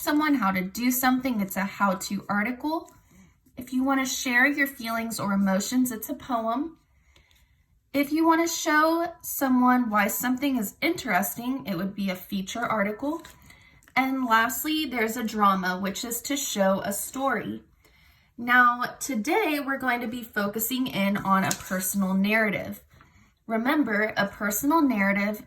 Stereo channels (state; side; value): identical; both; correlation 1.00